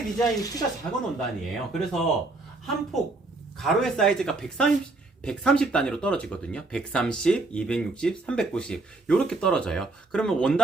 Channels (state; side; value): quieter; left; 3.2 dB